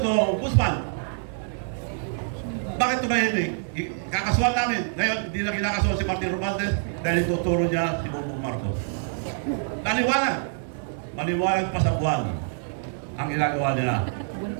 Ombudsman. Bakit tumahimik? Kakasuhan namin. Ngayon, hindi na kinakasuhan si Martin Romualdez dahil ituturo niya si Bongbong Marcos. Maliwanag. Maliwanag pa sa buwan ang ginagawa nila.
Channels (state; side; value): silent; left; 61 dB below the other